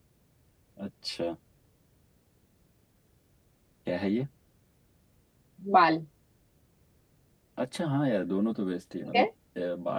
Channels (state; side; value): identical; both; correlation 1.00